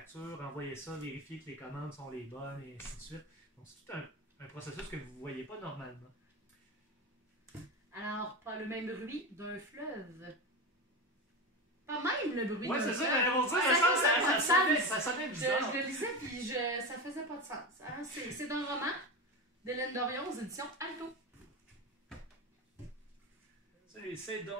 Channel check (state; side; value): normal; both; correlation 0.21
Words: envoyer ça, vérifier que les commandes sont les bonnes, et ainsi de suite. Donc, c'est tout un processus que vous ne voyez pas normalement. Alors, pas le même bruit d'un fleuve. Pas même le bruit Ouais, d'un c'est fleuve. ça, j'allais vous dire, ça sonnait Je bizarre. le lisais, puis ça faisait pas de sens. Hein? C'est un roman d'Hélène Dorion aux éditions Alto. C'est